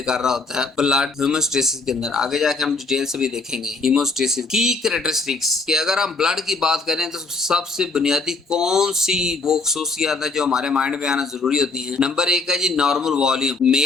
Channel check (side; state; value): right; quieter; 3.6 dB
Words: कर रहा होता है ब्लड हीमोस्टेसिस के अंदर। आगे जाके हम डिटेल से भी देखेंगे हीमोस्टेसिस की कैरेक्टरिस्टिक्स, कि अगर हम ब्लड की बात करें तो सबसे बुनियादी कौन सी वो खसूसियात है जो हमारे माइंड में आना जरूरी होती है। नंबर 1 है जी नॉर्मल वॉल्यूम।